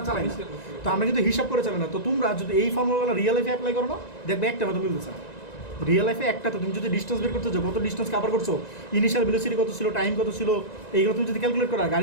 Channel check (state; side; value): late; right; 1.9 ms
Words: চালাই না, তো আমরা কিন্তু হিসাব করে চালাই না। তো তোমরা যদি এই ফর্মুলাগুলো রিয়েল লাইফে অ্যাপ্লাই করো না, দেখবে একটা কথা মিলতেছে না। রিয়েল লাইফে একটা, তো তুমি যদি ডিস্টেন্স বের করতে চাও, কত ডিস্টেন্স কভার করছো, ইনিশিয়াল ভেলোসিটি কত ছিল, টাইম কত ছিল, এইগুলো তুমি যদি ক্যালকুলেট করো,